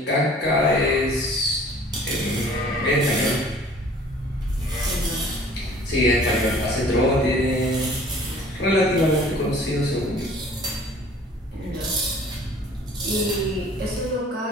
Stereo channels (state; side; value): normal; both; correlation 0.50